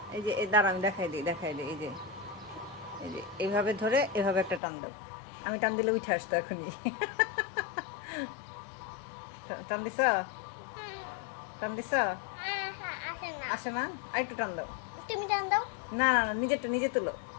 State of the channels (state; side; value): drops out; right; at 4.6 s